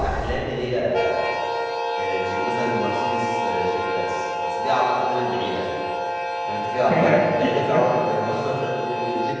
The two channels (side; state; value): both; identical; correlation 1.00